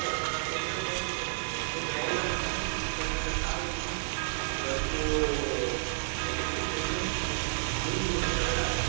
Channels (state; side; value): silent; left; digital silence